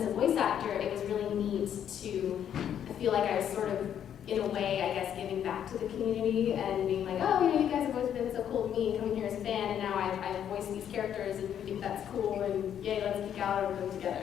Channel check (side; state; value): right; quieter; 9.4 dB